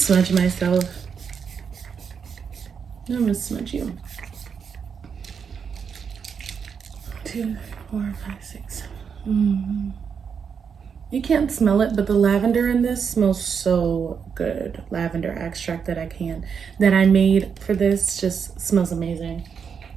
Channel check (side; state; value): left; quieter; 6.6 dB